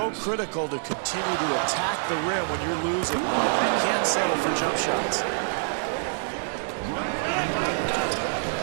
critical to continue to attack the rim when you're losing, Marv. You can't settle for jump shots.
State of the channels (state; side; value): silent; left; digital silence